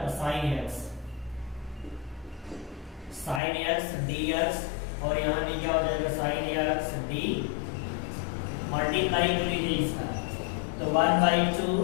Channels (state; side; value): drops out; right; at 3.4 s